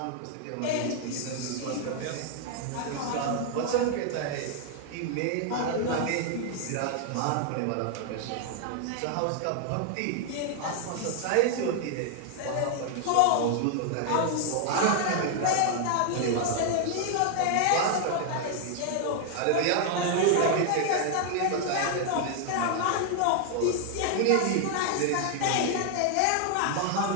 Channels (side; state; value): both; different; correlation 0.00